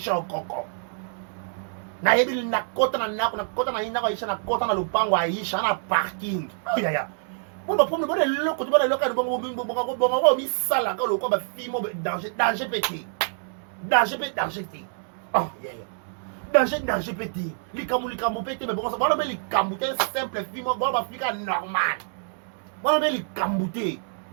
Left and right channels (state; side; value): silent; left; digital silence